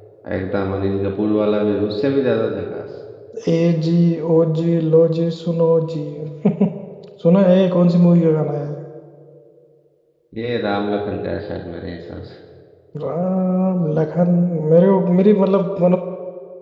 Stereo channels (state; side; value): identical; both; correlation 1.00